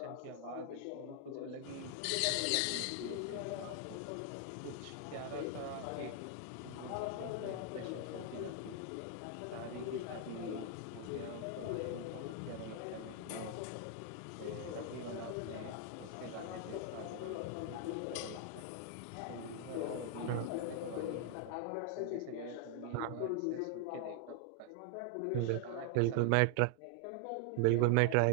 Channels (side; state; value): both; different; correlation 0.00